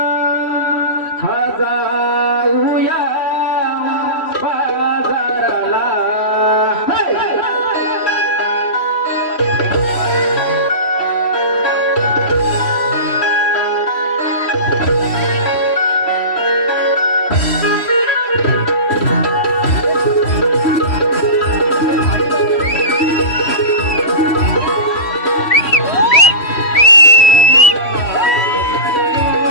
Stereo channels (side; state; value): right; late; 3.1 ms